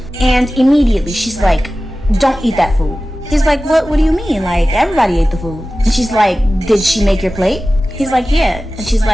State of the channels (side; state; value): both; normal; correlation 0.96